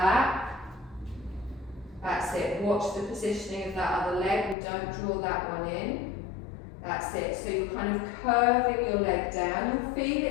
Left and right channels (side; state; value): right; drops out; at 4.5 s